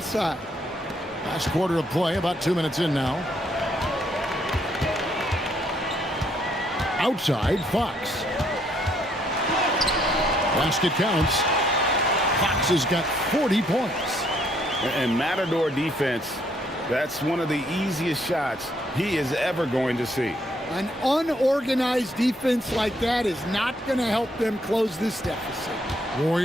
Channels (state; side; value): normal; both; correlation 0.69